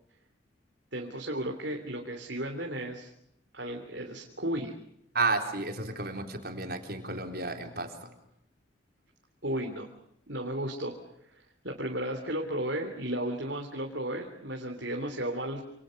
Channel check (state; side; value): normal; both; correlation 0.01